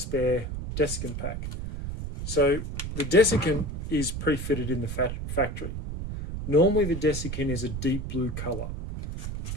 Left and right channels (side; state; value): right; noise; rumble, 5 dB below the sound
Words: desiccant pack. So the desiccant is pre-fitted in the factory. Normally the desiccant is a deep blue colour.